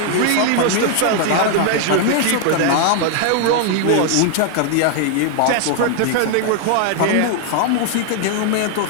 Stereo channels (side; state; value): both; different; correlation 0.00